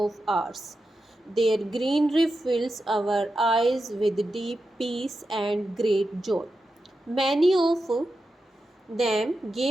ours. Their greenery fills our eyes with deep peace and great joy. Many of them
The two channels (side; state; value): both; normal; correlation 0.90